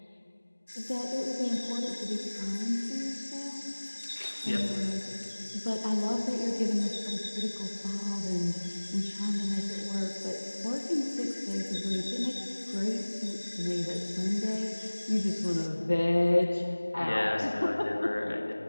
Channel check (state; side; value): inverted; both; correlation -1.00